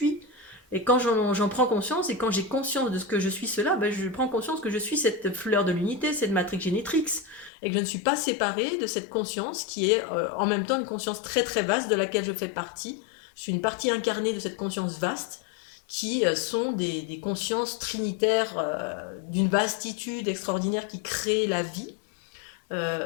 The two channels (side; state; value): right; drops out; at 7.5 s